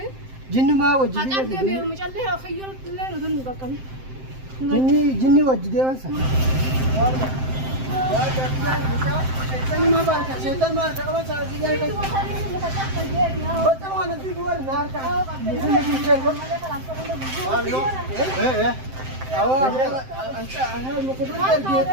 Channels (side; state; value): left; late; 7.7 ms